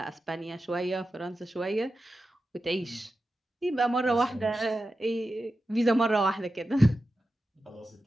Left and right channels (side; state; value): both; normal; correlation 0.91